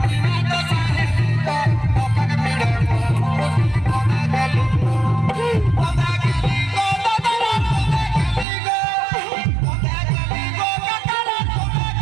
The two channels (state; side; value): drops out; left; at 8.5 s